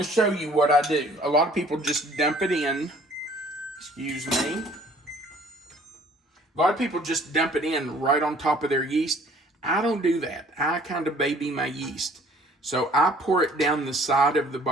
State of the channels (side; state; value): both; normal; correlation 0.55